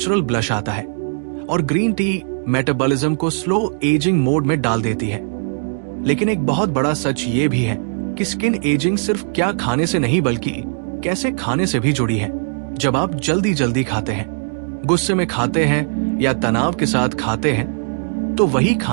ब्लश आता है। और ग्रीन टी मेटाबॉलिज्म को स्लो एजिंग मोड में डाल देती है। लेकिन एक बहुत बड़ा सच ये भी है कि स्किन एजिंग सिर्फ क्या खाने से नहीं बल्कि कैसे खाने से भी जुड़ी है। जब आप जल्दी जल्दी खाते हैं, गुस्से में खाते हैं या तनाव के साथ खाते हैं, तो वही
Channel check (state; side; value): silent; left; digital silence